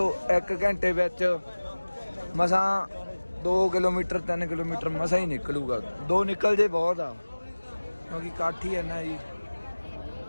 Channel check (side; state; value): both; inverted; correlation -1.00